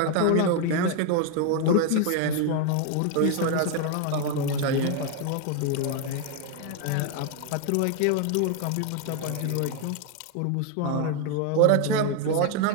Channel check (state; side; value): different; both; correlation 0.01